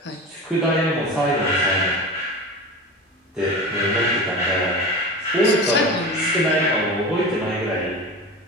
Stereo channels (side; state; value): both; normal; correlation 0.30